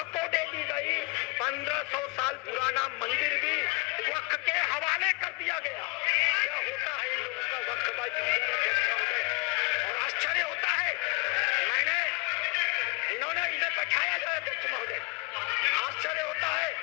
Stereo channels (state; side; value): quieter; right; 29.2 dB